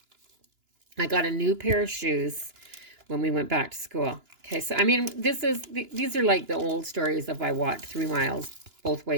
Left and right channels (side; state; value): left; late; 2.9 ms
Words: I got a new pair of shoes when we went back to school. Okay, so I mean, these are like the old stories of I walked 3 miles both